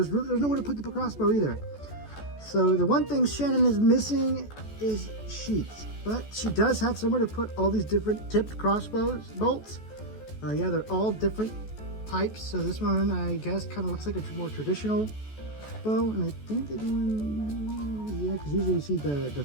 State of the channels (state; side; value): late; right; 14 ms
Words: nowhere to put the crossbow either. So the one thing Shannon is missing is sheaths, but she does have somewhere to put all these different tipped crossbows bolts. Yeah, they're all different types. So this one, I guess, kind of looks like a more traditional bow, and I think they're doing, yeah, because usually you see the